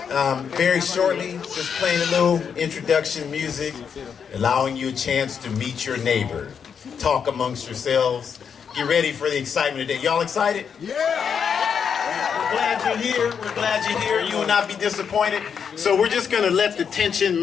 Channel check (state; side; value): quieter; right; 7.0 dB